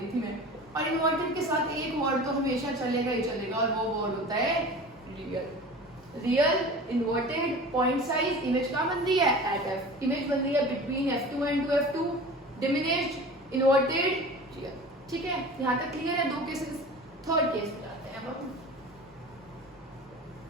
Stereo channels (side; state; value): both; normal; correlation 0.37